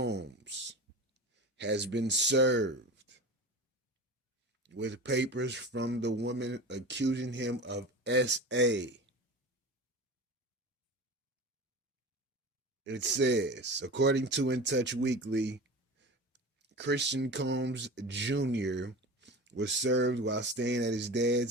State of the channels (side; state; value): both; normal; correlation 0.32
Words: has been served with papers from the woman accusing him of SA. It says, according to In Touch Weekly, Christian Combs Jr. was served while staying at his